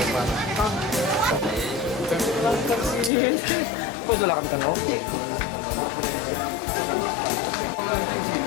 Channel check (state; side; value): drops out; right; at 3.1 s